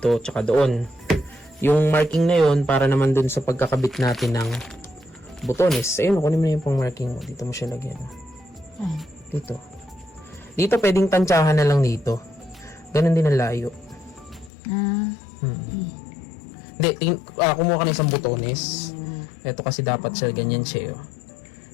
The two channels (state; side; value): drops out; right; at 14.5 s